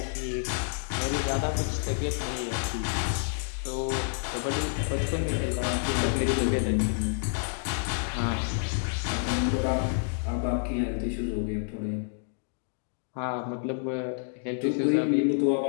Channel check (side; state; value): right; silent; digital silence